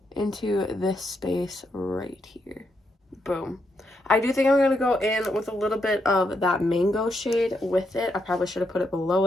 into this space right here. Boom. I do think I'm going to go in with a little bit of that mango shade with it. I probably should have put it below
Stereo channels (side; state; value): both; normal; correlation 0.80